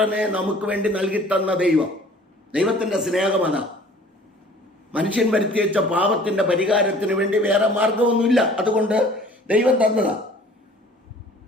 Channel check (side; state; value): both; normal; correlation 0.50